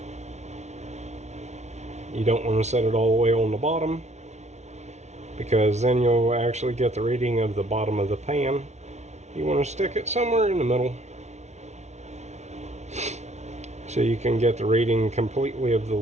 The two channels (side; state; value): left; late; 0.32 ms